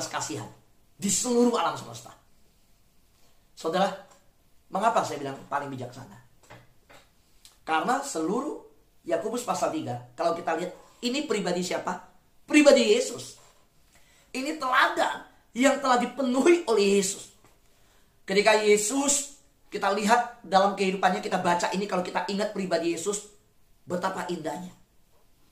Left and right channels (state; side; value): identical; both; correlation 1.00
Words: kasihan di seluruh alam semesta. Saudara, mengapa saya bilang paling bijaksana? Karena seluruh Yakobus pasal 3, kalau kita lihat, ini pribadi siapa? Pribadi Yesus. Ini teladan yang telah dipenuhi oleh Yesus. Ketika Yesus, kita lihat dalam kehidupannya, kita baca ini, kalau kita ingat pribadi Yesus, betapa indahnya.